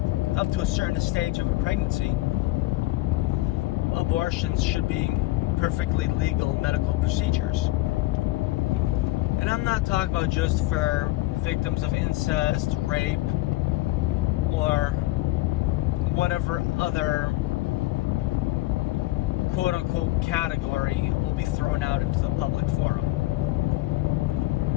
up to a certain stage of a pregnancy, abortions should be perfectly legal medical procedures. And I'm not talking about just for victims of incest, rape, or whatever other quote-unquote category will be thrown out into the public forum.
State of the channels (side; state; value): right; quieter; 18.8 dB